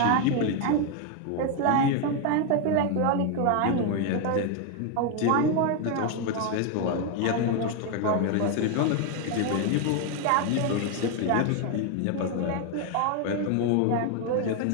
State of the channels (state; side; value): different; both; correlation 0.01